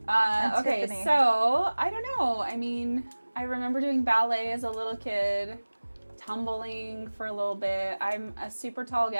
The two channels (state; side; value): inverted; both; correlation -1.00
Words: Okay, Tiffany. so I don't know. I mean, I remember doing ballet as a little kid, tumbling for a little bit. I'm a super tall